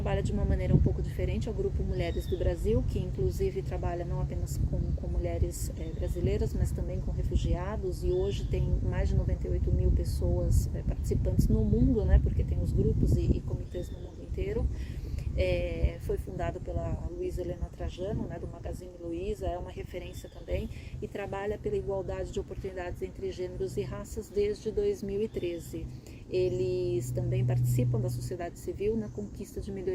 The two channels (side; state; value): both; identical; correlation 1.00